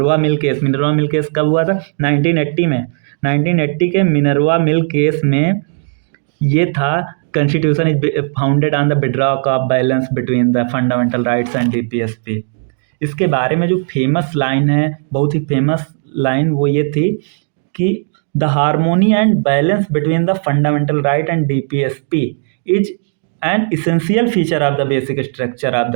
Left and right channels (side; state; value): left; silent; 60 dB below the other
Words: mill case. Minerva mill case कब हुआ था, 1980 में। 1980 के मिनर्वा मिल केस में ये था, constitution is founded on the bedrock of balance between the fundamental rights and DPSP. इसके बारे में जो फेमस लाइन है, बहुत ही फेमस लाइन, वो ये थी कि the harmony and balance between the fundamental right and DPSP is an essential feature of the basic structure of